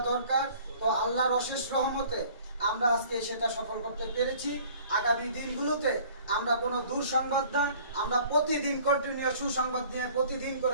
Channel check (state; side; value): inverted; both; correlation -0.52